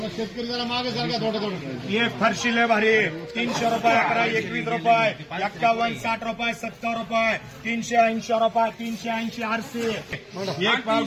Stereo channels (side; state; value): both; identical; correlation 1.00